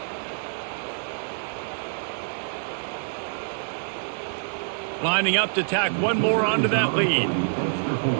Lining up to tack one more onto that lead.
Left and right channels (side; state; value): left; silent; digital silence